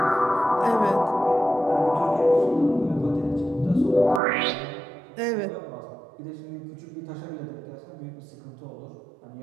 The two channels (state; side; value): drops out; left; at 4.2 s